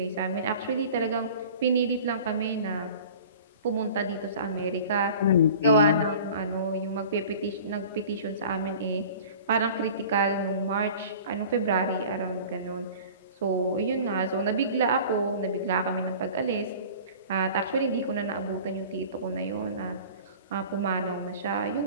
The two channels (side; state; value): both; inverted; correlation -0.42